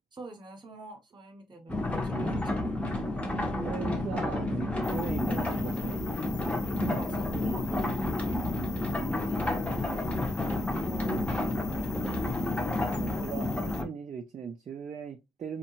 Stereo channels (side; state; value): both; normal; correlation 0.80